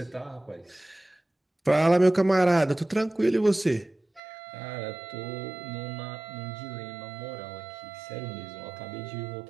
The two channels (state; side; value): drops out; left; at 4.2 s